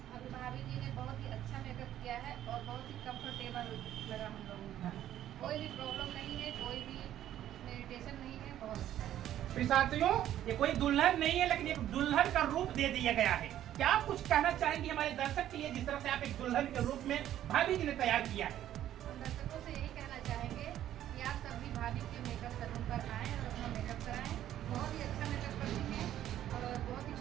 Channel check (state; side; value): quieter; left; 11.9 dB